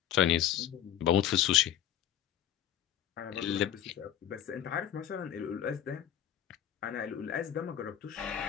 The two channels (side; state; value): right; quieter; 10.7 dB